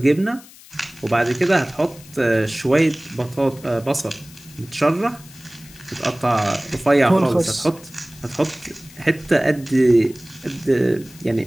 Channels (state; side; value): noise; left; hiss, 21 dB below the sound